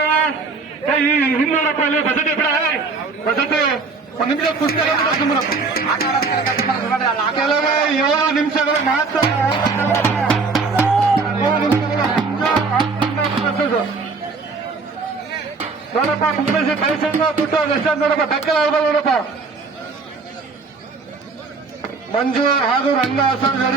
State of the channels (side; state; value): left; quieter; 4.3 dB